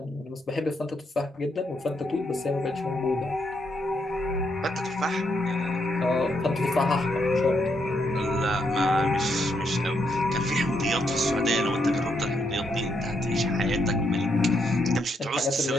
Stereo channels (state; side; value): normal; both; correlation 0.77